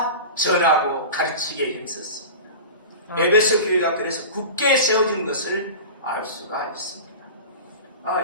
전하고 가르치기에 힘썼습니다. 에베소 교회가 그래서 굳게 세워진 것을 알 수가 있습니다.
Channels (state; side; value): inverted; both; correlation -0.32